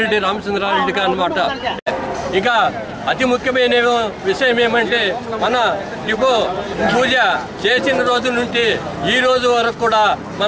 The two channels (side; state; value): both; identical; correlation 1.00